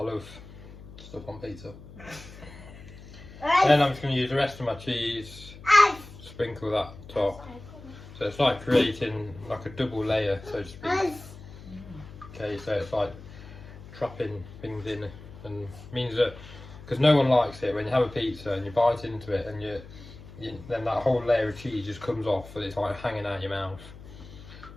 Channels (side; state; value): left; noise; hum, 17 dB below the sound